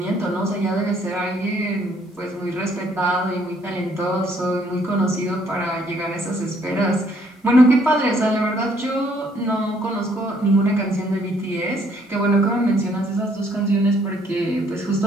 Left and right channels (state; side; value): normal; both; correlation 0.66